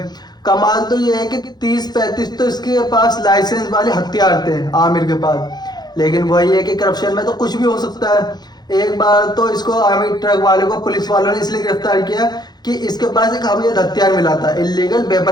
कमाल तो ये है कि 30-35 तो इसके पास लाइसेंस वाले हथियार थे आमिर के पास। लेकिन वही है कि करप्शन में तो कुछ भी हो सकता है। एक बार तो इसको आमिर ट्रक वाले को पुलिस वालों ने इसलिए गिरफ्तार किया कि इसके पास एक अवैध हथियार मिला था, इलीगल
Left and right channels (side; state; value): right; late; 0.20 ms